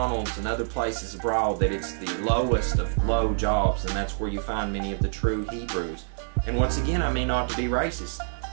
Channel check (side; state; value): left; silent; 59 dB below the other